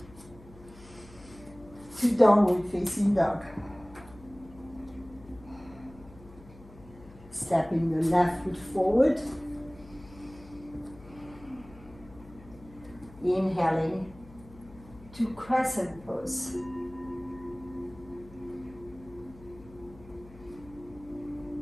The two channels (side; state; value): left; noise; hum, 20 dB below the sound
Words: to downward facing dog. Stepping the left foot forward. Inhaling to crescent pose.